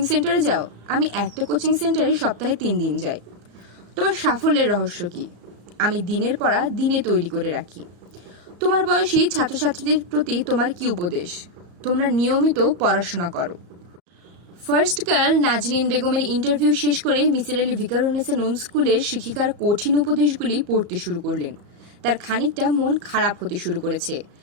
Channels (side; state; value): left; late; 34 ms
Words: সেন্টারে যাও? আমি একটা কোচিং সেন্টারে সপ্তাহে 3 দিন যাই। তোমার সাফল্যের রহস্য কি? আমি দিনের পড়া দিনে তৈরি করে রাখি। তোমার বয়সী ছাত্রছাত্রীদের প্রতি তোমার কি উপদেশ? তোমরা নিয়মিত পড়াশোনা করো। ফার্স্ট গার্ল নাজনীন বেগমের ইন্টারভিউ শেষ করে মিসির আলী ভিকারুন্নিসা নুন স্কুলের শিক্ষিকার কঠিন উপদেশগুলি পড়তে শুরু করলেন। তার খানিকটা মন খারাপ হতে শুরু করেছে।